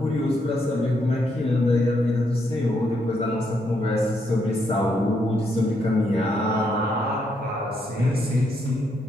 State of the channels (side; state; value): both; normal; correlation 0.77